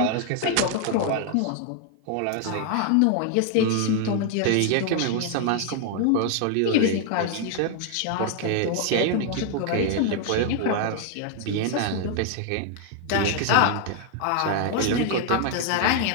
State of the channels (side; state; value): both; different; correlation 0.00